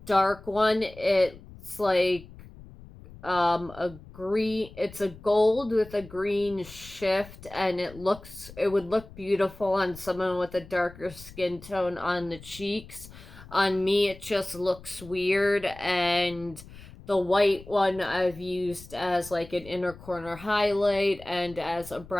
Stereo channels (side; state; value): left; noise; rumble, 18 dB below the sound